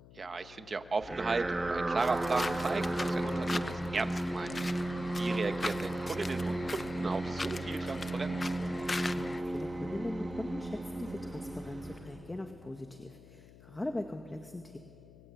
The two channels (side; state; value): left; noise; hum, 20 dB below the sound